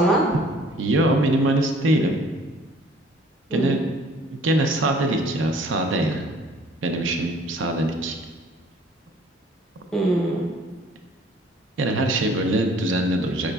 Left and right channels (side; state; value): both; normal; correlation 0.55